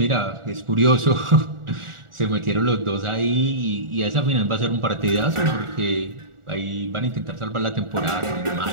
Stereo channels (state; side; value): late; left; 1.4 ms